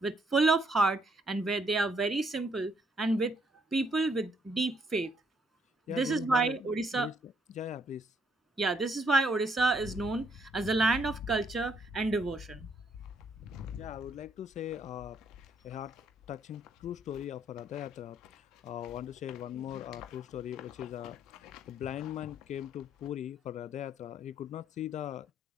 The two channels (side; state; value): both; normal; correlation 0.70